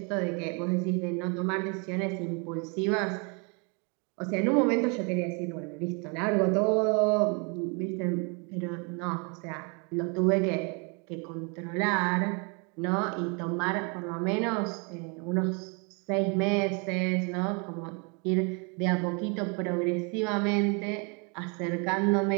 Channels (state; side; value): quieter; left; 33.9 dB